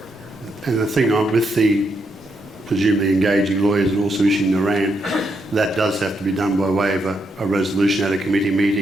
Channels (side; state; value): both; normal; correlation 0.80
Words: And the thing on with the presumably engaging lawyers and also issuing the RAN, that does have to be done by way of a resolution at a committee